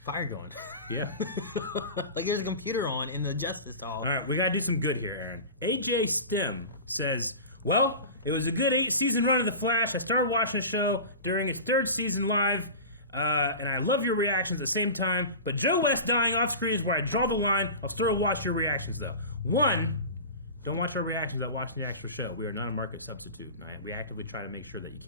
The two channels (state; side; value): inverted; both; correlation -0.32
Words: fire going. Yeah. Like there's a computer on in the Justice Hall. All right, we gotta do some good here, Aaron. AJ Stem says, "Well, it was a good 8-season run of The Flash. I started watching the show during its 3rd season live." And I love your reactions at the same time, but Joe West dying off screen is where I draw the line. I'll still watch your reactions though. 1, don't watch our reactions without watching the actual show. We are not a market substitute. We actively try to make sure that you